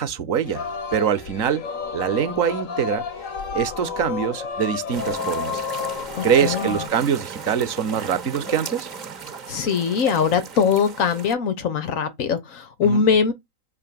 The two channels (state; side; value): late; right; 3.9 ms